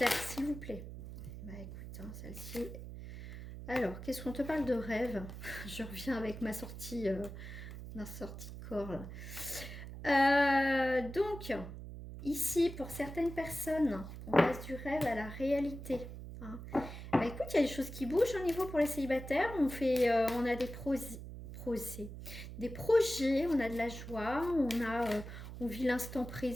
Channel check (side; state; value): right; noise; hum, 10 dB below the sound